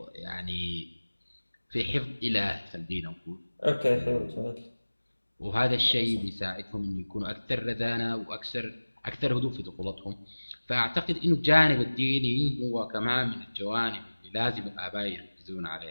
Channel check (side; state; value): both; inverted; correlation -1.00